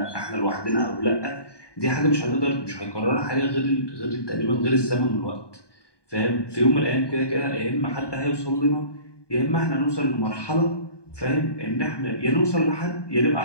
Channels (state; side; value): late; right; 1.2 ms